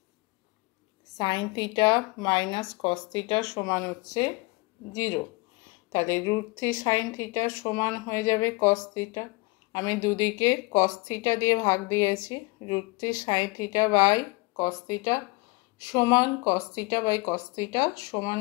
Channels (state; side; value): quieter; right; 25.2 dB